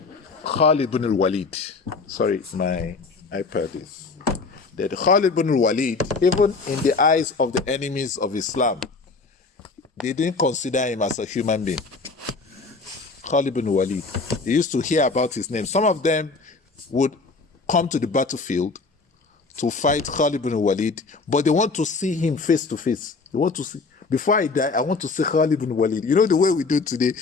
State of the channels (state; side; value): quieter; right; 4.1 dB